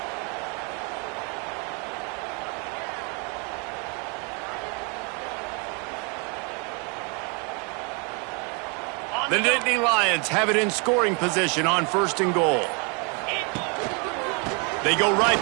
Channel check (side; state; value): left; quieter; 34.2 dB